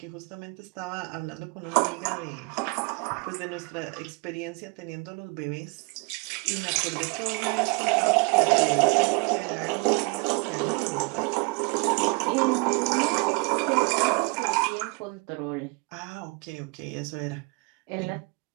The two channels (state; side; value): quieter; left; 31.0 dB